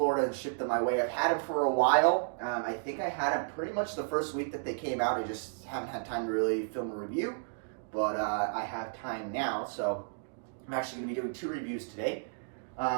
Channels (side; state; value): left; silent; digital silence